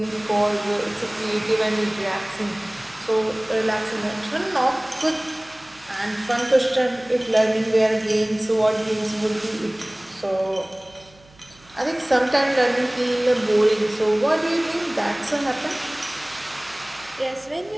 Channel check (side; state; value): right; noise; hum, 27 dB below the sound